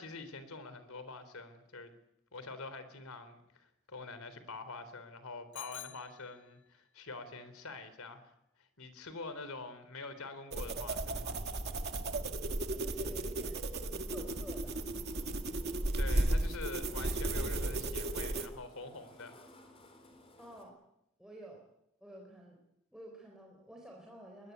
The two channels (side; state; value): both; normal; correlation 0.59